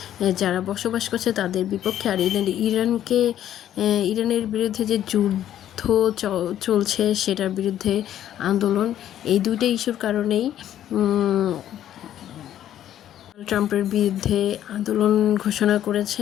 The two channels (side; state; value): right; quieter; 11.4 dB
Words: যারা বসবাস করছে তাদের বিপক্ষে, আর ইরানের বিরুদ্ধে যে যুদ্ধ চলছে সেটার বিরুদ্ধে আন্দোলন। এই দুইটা ইস্যুর কারণেই ট্রাম্পের বিরুদ্ধে আন্দোলন ঘোষণা